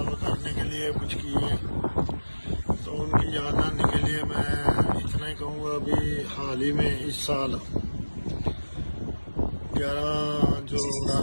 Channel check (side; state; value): both; inverted; correlation -1.00